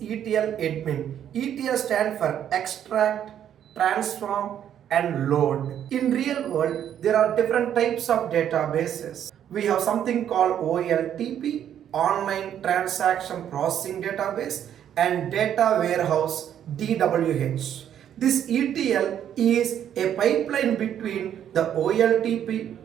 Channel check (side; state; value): left; quieter; 9.9 dB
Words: ETL Admin? ETL stands for extract, transform, and load. In real world, there are different types of databases. We have something called OLTP, Online Transaction Processing Database, and Data Warehouse, DWH. This ETL is a pipeline between the OLTP